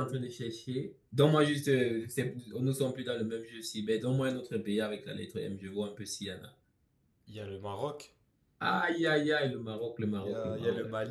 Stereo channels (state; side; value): identical; both; correlation 1.00